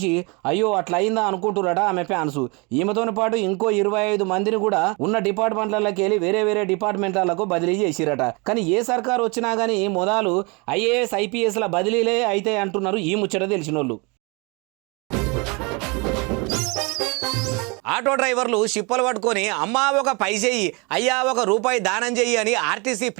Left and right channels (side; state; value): left; quieter; 29.5 dB